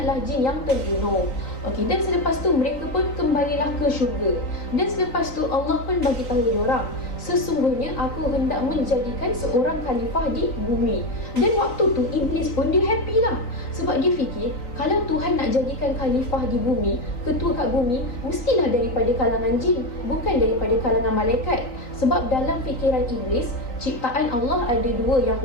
jin yang terbunuh. Okey, dan selepas tu mereka pun kembalilah ke syurga. Dan selepas tu Allah pun bagi tahu diorang, sesungguhnya aku hendak menjadikan seorang khalifah di bumi. Dan waktu tu Iblis pun dia happy lah, sebab dia fikir kalau Tuhan nak jadikan khalifah di bumi, ketua kat bumi, mestilah daripada kalangan jin, bukan daripada kalangan malaikat. Sebab dalam fikiran Iblis, ciptaan Allah ada dua yang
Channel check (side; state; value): right; late; 3.9 ms